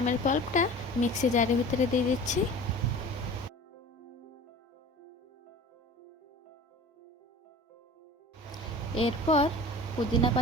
পাল্পটা মিক্সি জারের ভিতরে দিয়ে দিচ্ছি। এরপর পুদিনা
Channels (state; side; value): normal; both; correlation 0.40